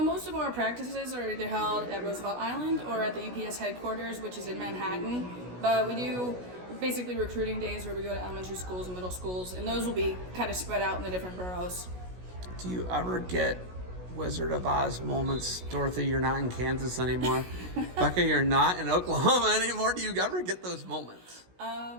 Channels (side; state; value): left; late; 16 ms